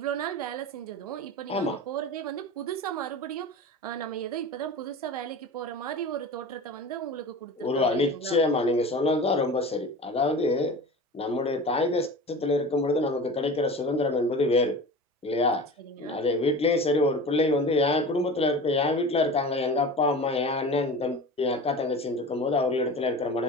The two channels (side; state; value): both; normal; correlation 0.34